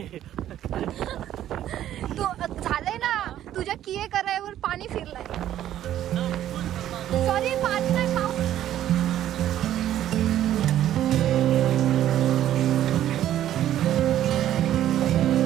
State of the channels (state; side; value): quieter; left; 12.0 dB